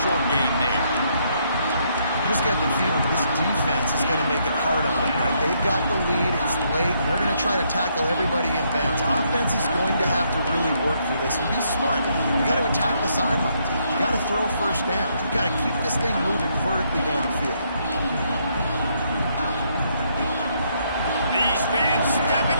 short gain there. Just get the feeling this defense is going to make it hard on them, right? They've got the lead, it's late, and they're going to try to tackle everybody in bounds. Offense is going to have to really work for this and be smart. You got to attack the sidelines. You got to throw first downs. You got to keep this thing moving vertically down the field. These fans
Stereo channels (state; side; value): inverted; both; correlation -0.73